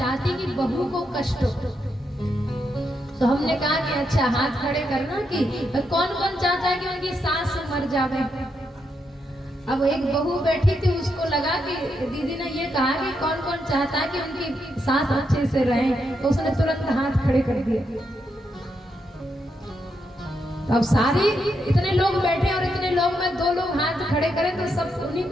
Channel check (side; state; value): both; normal; correlation 0.81